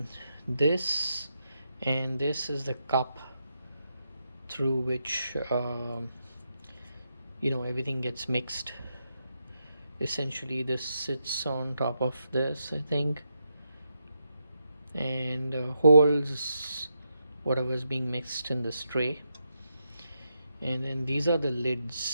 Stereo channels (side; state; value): both; inverted; correlation -0.82